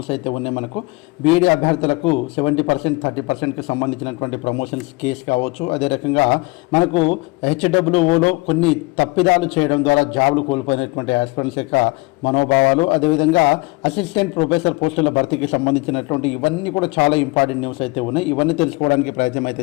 అయితే ఉన్నాయి. మనకు బీఈడీ అభ్యర్థులకు 70% 30%కి సంబంధించినటువంటి ప్రమోషన్స్ కేసు కావచ్చు. అదే రకంగా మనకు హెచ్డబ్ల్యూఓలో కొన్ని తప్పిదాలు చేయడం ద్వారా జాబులు కోల్పోయినటువంటి ఆస్పిరెంట్స్ యొక్క మనోభావాలు, అదేవిధంగా అసిస్టెంట్ ప్రొఫెసర్ పోస్టుల భర్తీకి సంబంధించినటువంటి ఇవన్నీ కూడా చాలా ఇంపార్టెంట్ న్యూస్ అయితే ఉన్నాయి. ఇవన్నీ తెలుసుకోవడానికి ప్రయత్నం అయితే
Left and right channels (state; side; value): quieter; right; 24.1 dB